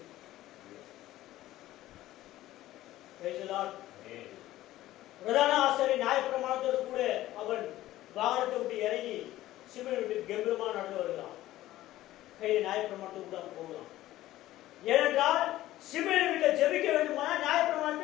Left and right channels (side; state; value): right; quieter; 15.2 dB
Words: பிரதான ஆசாரியர் நியாயப்பிரமாணத்தோடு கூட அவன் வாகனத்தை விட்டு இறங்கி சிமியோன் வீட்டுக்கு கம்பீரமா நடந்து வருகிறான். கையில் நியாயப்பிரமாணத்துக்கு கூட போகலாம். ஏனென்றால் சிமியோன் வீட்டில் ஜெபிக்க வேண்டுமானால்